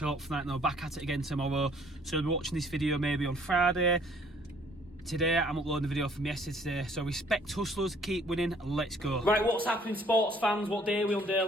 out for that. And I'll back at it again tomorrow. So I'll be watching this video maybe on Friday. Today I'm uploading the video from yesterday, so respect hustlers, keep winning, let's go. Right, what's happening, sports fans? What day are we on,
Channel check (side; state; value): both; normal; correlation 0.60